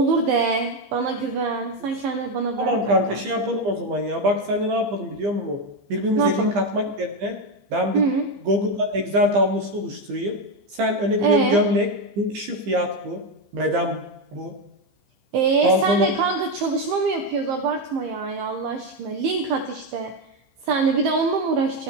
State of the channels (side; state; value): left; late; 15 ms